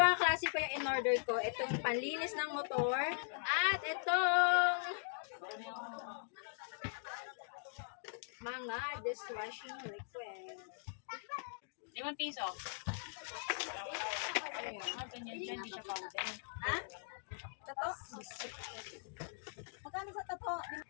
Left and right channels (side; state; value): right; silent; digital silence